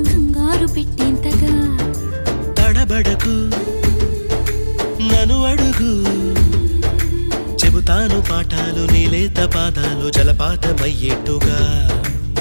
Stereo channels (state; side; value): inverted; both; correlation -1.00